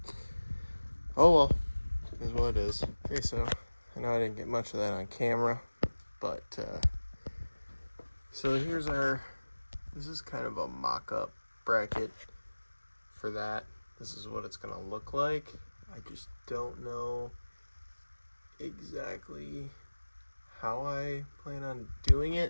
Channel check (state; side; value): inverted; both; correlation -1.00